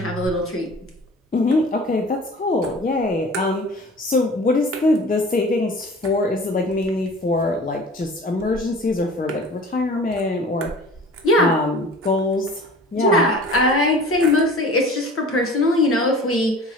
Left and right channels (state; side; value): normal; both; correlation 0.43